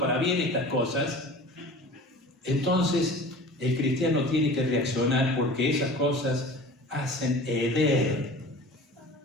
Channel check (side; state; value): both; normal; correlation 0.40